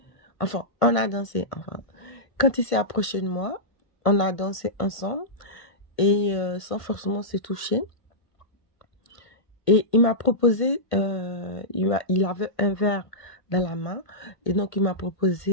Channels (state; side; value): late; right; 1.5 ms